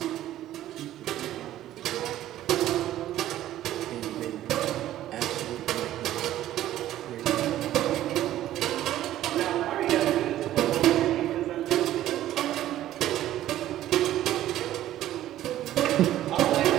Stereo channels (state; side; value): quieter; left; 13.3 dB